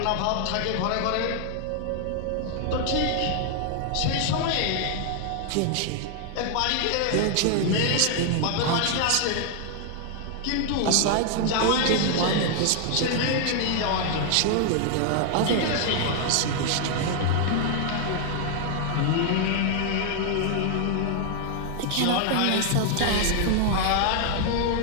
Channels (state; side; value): different; both; correlation 0.00